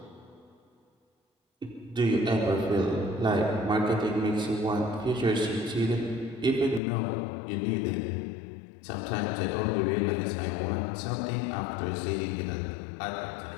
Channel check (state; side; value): drops out; right; at 6.8 s